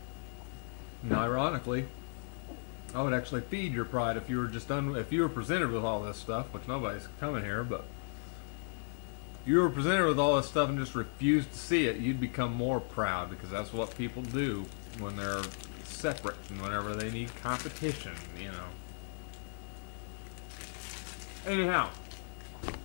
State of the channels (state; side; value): silent; right; 54 dB below the other